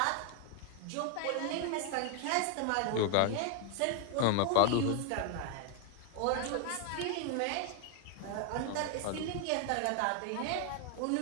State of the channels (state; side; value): different; both; correlation 0.00